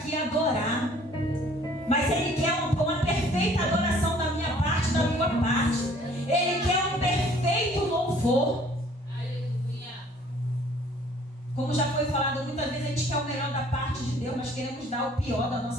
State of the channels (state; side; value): normal; both; correlation 0.56